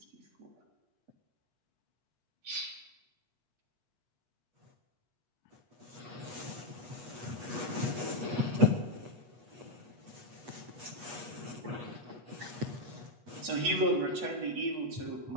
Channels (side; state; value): left; late; 8.3 ms